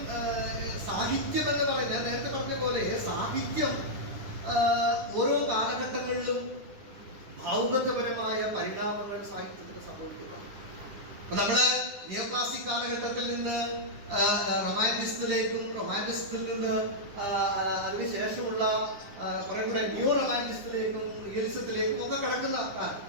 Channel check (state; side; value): late; left; 10 ms